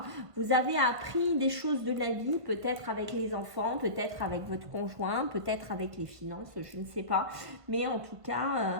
Vous avez appris des choses de la vie, peut-être avec les enfants, peut-être avec votre conjoint, peut-être avec les finances, je ne sais pas. Mais en tout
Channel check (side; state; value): left; late; 1.5 ms